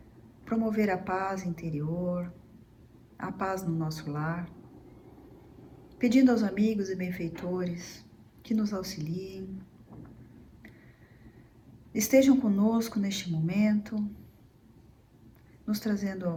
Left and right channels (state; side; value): identical; both; correlation 1.00